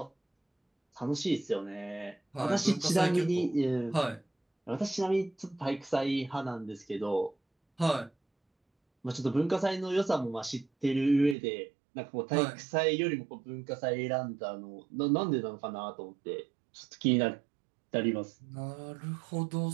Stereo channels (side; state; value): left; drops out; at 11.4 s